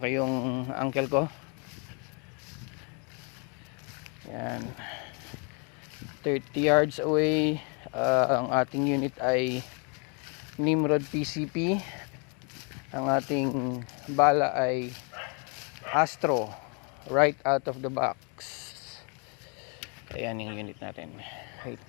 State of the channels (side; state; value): right; quieter; 35.6 dB